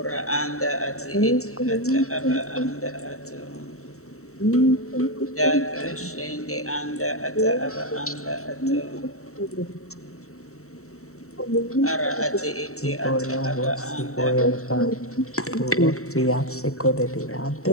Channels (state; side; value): late; right; 0.64 ms